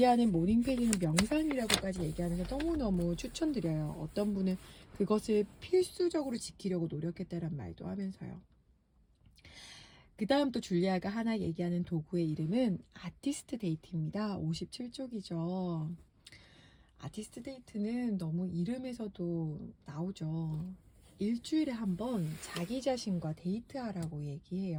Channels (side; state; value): both; identical; correlation 1.00